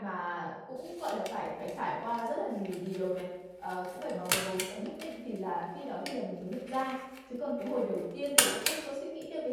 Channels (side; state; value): both; identical; correlation 1.00